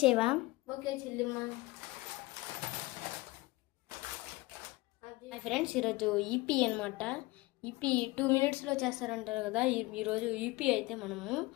Okay చెల్లిమ్మ. Hi friends, ఈరోజు ఈపీ అనమాట. ఈపీ 2 minutesలో చేస్తారంటారు కదా. ఈరోజు ఈపీ అయితే మనము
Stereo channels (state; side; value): quieter; right; 21.5 dB